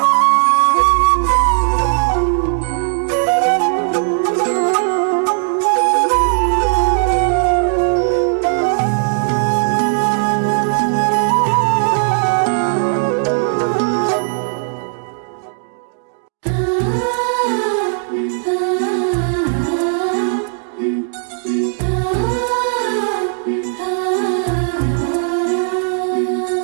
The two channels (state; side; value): silent; left; digital silence